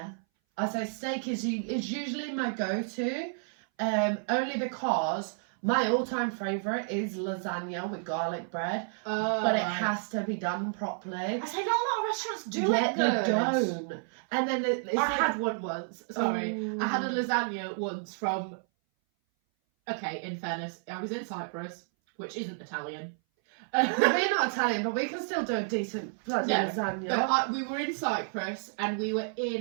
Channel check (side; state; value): left; silent; 57 dB below the other